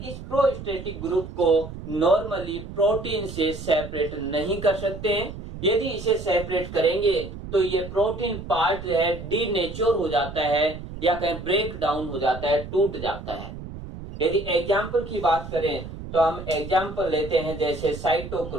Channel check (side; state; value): right; noise; rumble, 11 dB below the sound